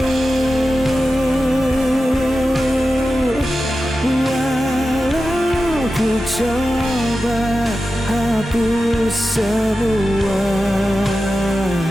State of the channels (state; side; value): normal; both; correlation 0.92